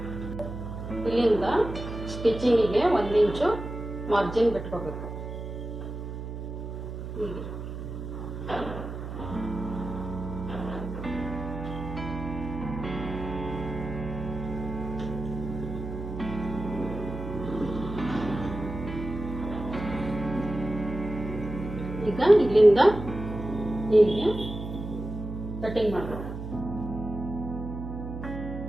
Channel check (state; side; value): noise; right; hum, 7 dB below the sound